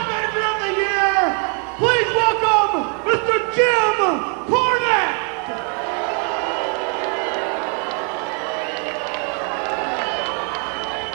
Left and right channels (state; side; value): quieter; left; 39.9 dB